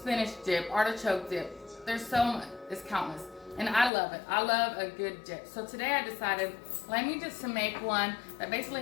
dip, artichoke dip. There's so much, it's countless. And I love it. I love a good dip. So today I decided, let me just make one that basically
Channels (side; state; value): right; drops out; at 3.9 s